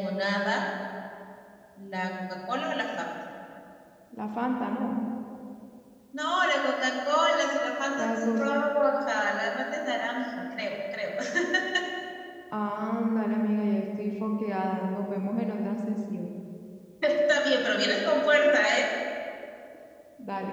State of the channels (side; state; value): both; identical; correlation 1.00